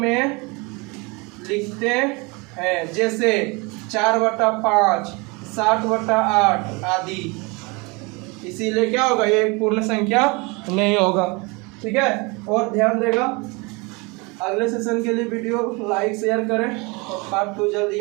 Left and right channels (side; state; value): left; quieter; 27.7 dB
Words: लिखते हैं। जैसे 4/5, 60/8 आदि। इसीलिए क्या होगा? ये पूर्ण संख्या नहीं होगा। ठीक है, और ध्यान देगा अगले सेशन के लिए वीडियो लाइक शेयर करें और पार्ट 2 जल्दी